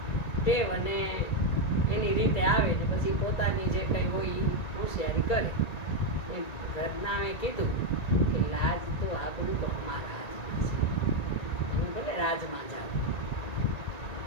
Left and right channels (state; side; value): late; right; 1.9 ms